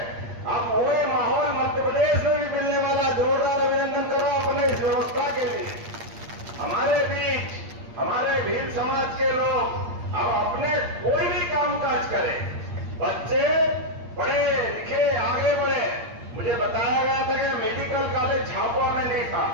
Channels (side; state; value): left; late; 8.6 ms